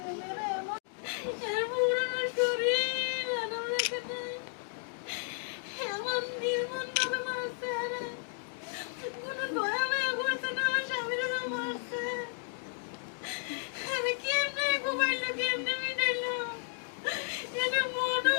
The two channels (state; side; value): silent; right; digital silence